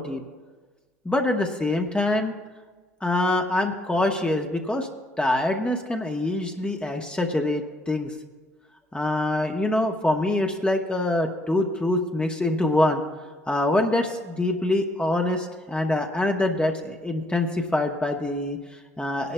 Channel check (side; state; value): both; normal; correlation 0.70